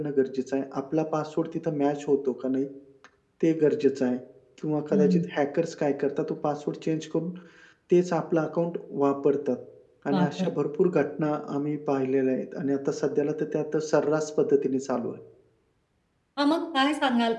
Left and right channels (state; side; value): identical; both; correlation 1.00